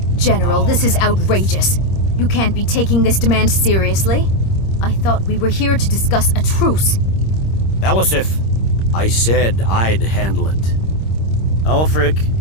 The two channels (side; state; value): right; late; 26 ms